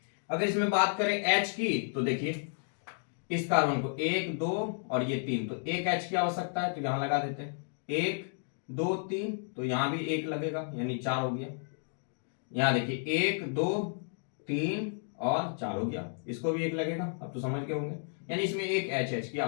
अगर इसमें बात करें H की, तो देखिए इस कार्बन को 1 2 और ये 3, तो एक H की आवश्यकता है तो यहां लगा देते हैं 1 2 3, तो यहां भी 1 लगेगा यानी 4 हो गया। यहां देखिए 1 2 3 और 4 हो गया, इसको भी 1 लगेगा। अब तो समझ गए होंगे, यानी इसमें एक HH की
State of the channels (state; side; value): silent; right; digital silence